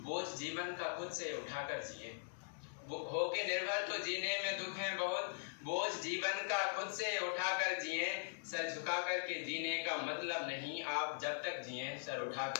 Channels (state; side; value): silent; right; digital silence